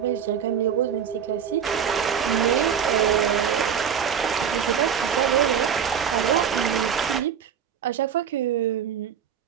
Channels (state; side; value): quieter; left; 7.9 dB